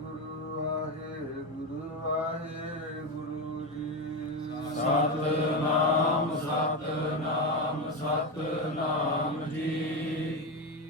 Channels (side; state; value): both; normal; correlation 0.14